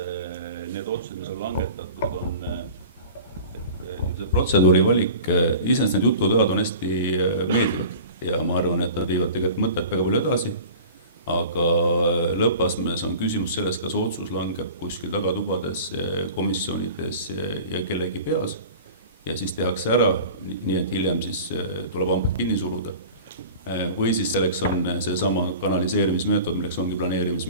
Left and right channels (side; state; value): both; inverted; correlation -0.40